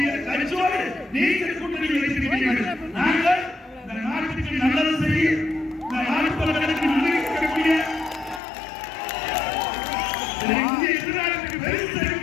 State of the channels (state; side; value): drops out; right; at 8.4 s